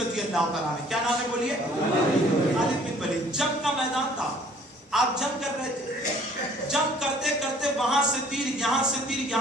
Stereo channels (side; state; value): both; normal; correlation 0.56